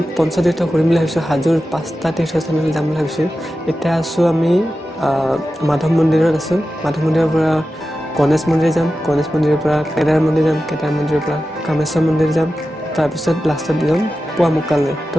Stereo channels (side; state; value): both; normal; correlation 0.93